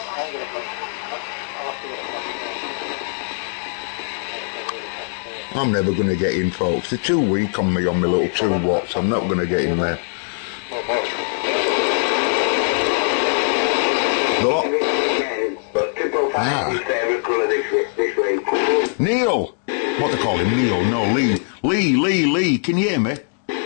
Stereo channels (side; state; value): right; silent; digital silence